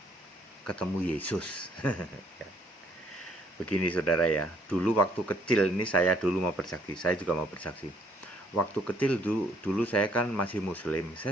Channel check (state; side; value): normal; both; correlation 0.64